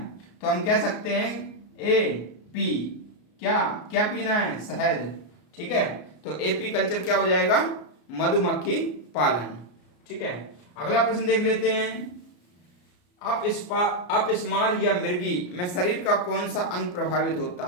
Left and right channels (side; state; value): right; late; 34 ms